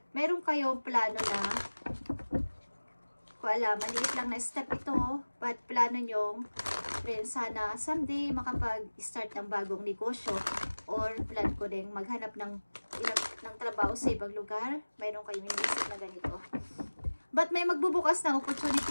meron kayong plano na ko alam, maliit lang na step ito, but plano nyo rin sana someday makapag-start ng bagong negosyo or plan ko rin maghanap ng trabaho sa ibang lugar. Mayroon kayong inisip na ganito. But may magbubukas ng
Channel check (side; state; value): both; inverted; correlation -1.00